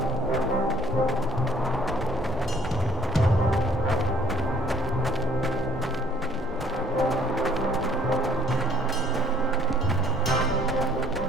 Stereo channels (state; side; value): normal; both; correlation 0.59